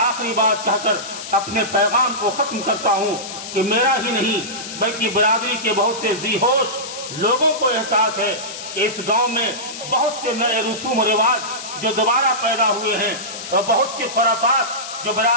بات کہہ کر اپنے پیغام کو ختم کرتا ہوں کہ میرا ہی نہیں بلکہ برادری کے بہت سے ذی ہوش لوگوں کو احساس ہے کہ اس گاؤں میں بہت سے نئے رسوم و رواج جو دوبارہ پیدا ہوئے ہیں اور بہت سی خرافات جو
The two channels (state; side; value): noise; left; hiss, 10 dB below the sound